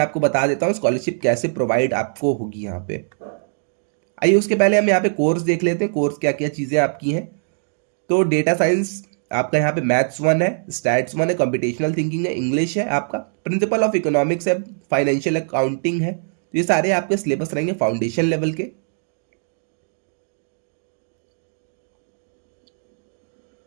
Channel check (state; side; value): silent; left; digital silence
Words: आपको बता देता हूँ स्कॉलरशिप कैसे प्रोवाइड आपको होगी यहाँ पे। आइए उसके पहले हम यहाँ पे कोर्स देख लेते हैं, कोर्स क्या क्या चीज़ें आपकी हैं। तो डेटा साइंस आपका यहाँ पे मैथ्स 1 है, स्टैट्स 1 है, कंप्यूटेशनल थिंकिंग है, इंग्लिश है, आपका प्रिंसिपल ऑफ इकोनॉमिक्स है, फाइनेंशियल अकाउंटिंग है। तो ये सारे आपके सिलेबस रहेंगे फाउंडेशन लेवल के।